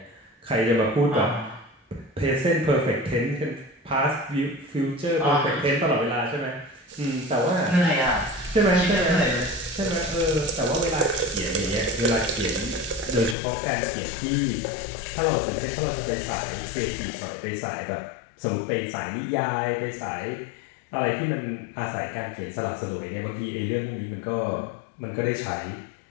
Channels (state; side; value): drops out; right; at 13.4 s